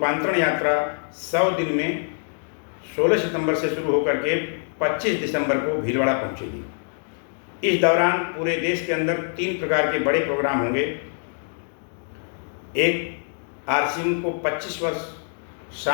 यात्रा 100 दिन में 16 सितंबर से शुरू होकर के 25 दिसंबर को भीलवाड़ा पहुंचेगी। इस दौरान पूरे देश के अंदर 3 प्रकार के बड़े प्रोग्राम होंगे। एक, आरसिम को 25 वर्ष,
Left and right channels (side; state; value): right; silent; digital silence